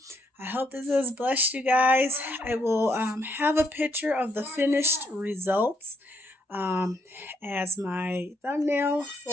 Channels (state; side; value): normal; both; correlation 0.74